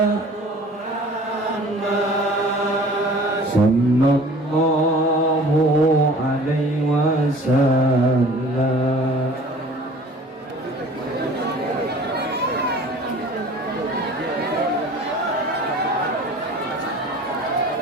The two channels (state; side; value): normal; both; correlation 0.47